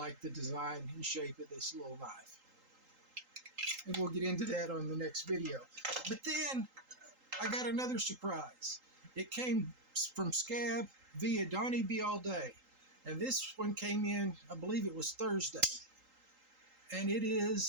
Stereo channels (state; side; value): late; left; 3.8 ms